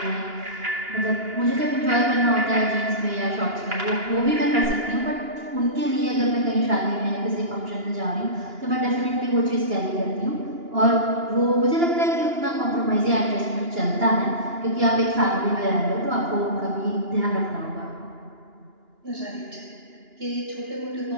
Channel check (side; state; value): left; late; 2.9 ms